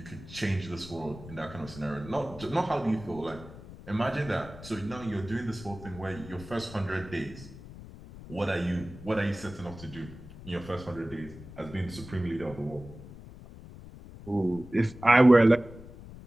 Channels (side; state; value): left; noise; rumble, 16 dB below the sound